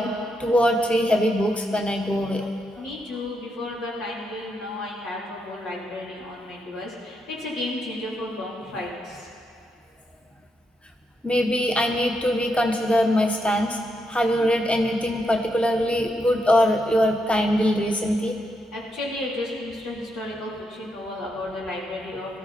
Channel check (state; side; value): normal; both; correlation 0.81